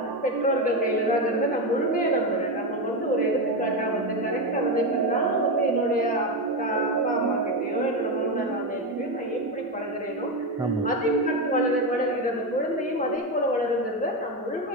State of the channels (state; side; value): normal; both; correlation 0.12